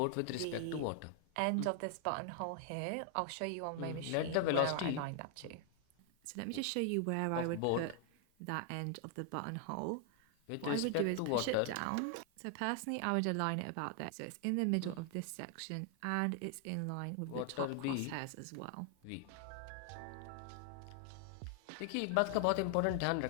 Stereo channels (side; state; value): both; different; correlation 0.00